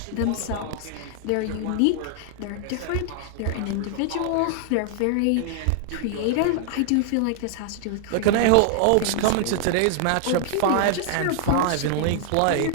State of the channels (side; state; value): both; different; correlation 0.00